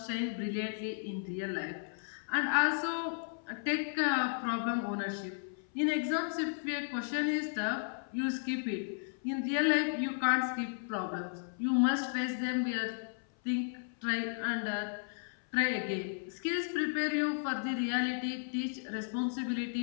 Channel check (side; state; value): right; silent; 55 dB below the other